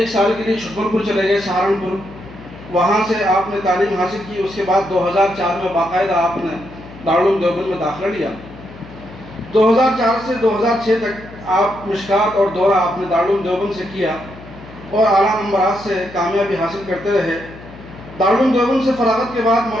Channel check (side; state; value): left; noise; hum, 17 dB below the sound